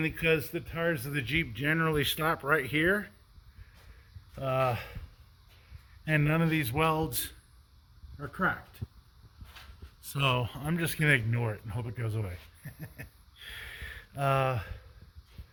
because the tires of the Jeep generally stop right here. And none of these welds are cracked. So I'm just gonna ignore it and hope it goes away. I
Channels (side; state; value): both; identical; correlation 1.00